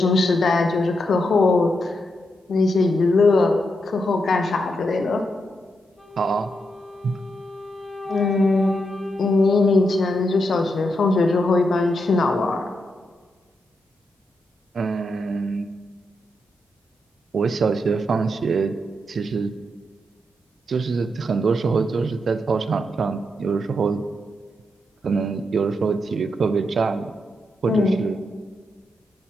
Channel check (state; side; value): normal; both; correlation 0.83